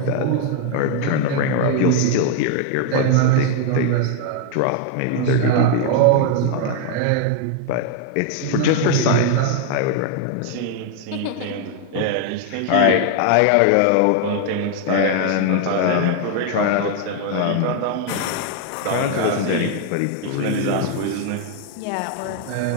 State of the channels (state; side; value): different; both; correlation 0.00